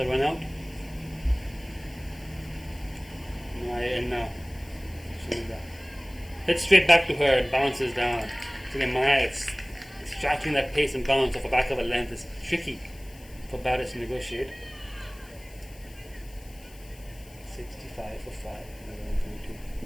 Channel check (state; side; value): noise; left; hiss, 23 dB below the sound